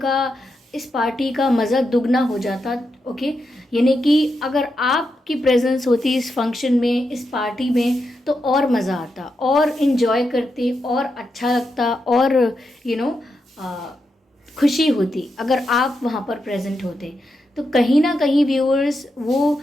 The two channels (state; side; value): normal; both; correlation 0.85